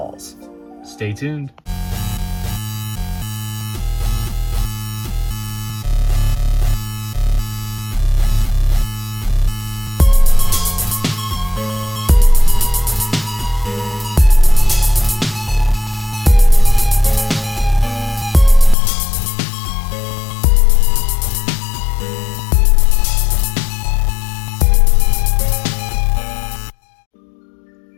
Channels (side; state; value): right; drops out; at 18.8 s